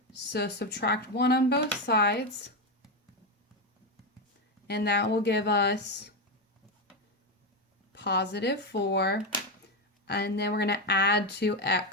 So subtract 1 on both sides. And that will give us positive 4. And then we're going to add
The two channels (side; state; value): both; normal; correlation 0.10